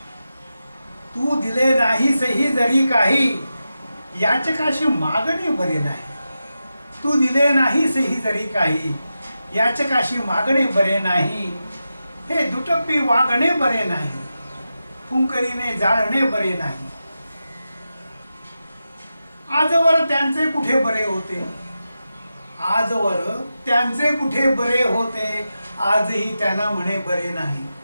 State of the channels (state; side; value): inverted; both; correlation -0.91